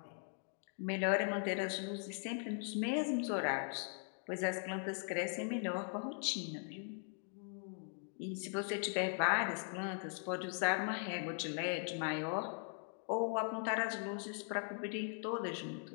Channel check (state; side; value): silent; right; 51 dB below the other